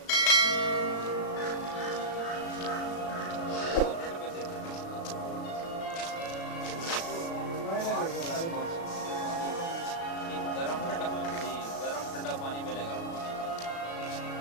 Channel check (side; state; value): right; late; 36 ms